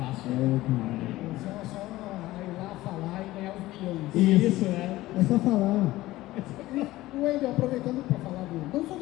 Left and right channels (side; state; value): right; quieter; 17.2 dB